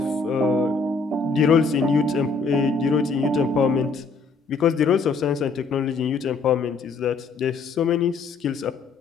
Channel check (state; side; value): quieter; right; 4.4 dB